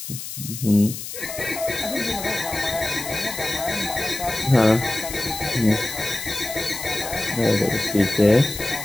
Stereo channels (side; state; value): left; noise; hiss, 9 dB below the sound